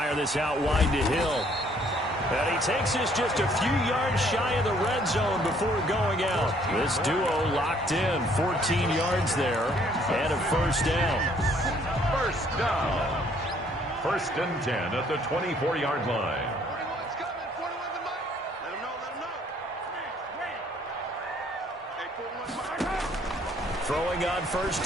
this out wide to Hill. And he takes this just a few yards shy of the red zone before going out. This duo locked in, 14 yards there, and a first down. First down. 1st and 10 at the 24-yard line. 41's coming, 41's the Mike. Let him know. Hey, 41 Mike. Throwing on first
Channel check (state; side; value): normal; both; correlation 0.63